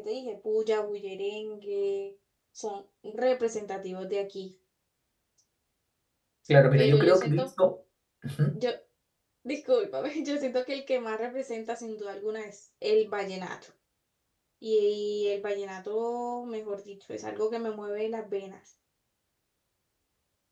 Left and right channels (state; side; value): identical; both; correlation 1.00